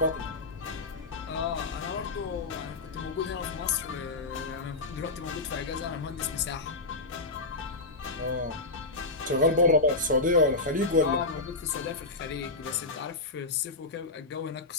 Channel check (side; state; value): right; quieter; 3.3 dB